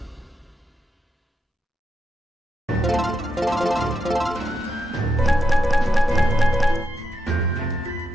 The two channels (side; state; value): both; normal; correlation 0.84